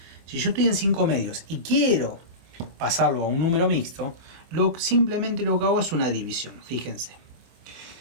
Si yo estoy en 5 medios y quiero pasarlo a un número mixto, simplemente lo que hago es una división. Fíjense.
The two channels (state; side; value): late; left; 25 ms